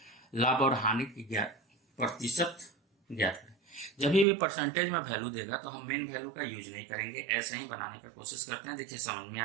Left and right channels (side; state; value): left; drops out; at 4.2 s